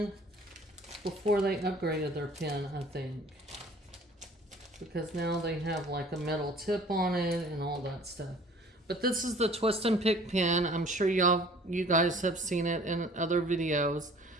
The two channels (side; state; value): both; normal; correlation 0.50